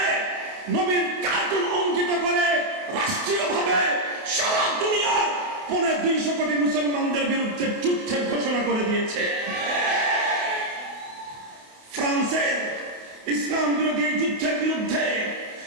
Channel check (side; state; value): left; late; 28 ms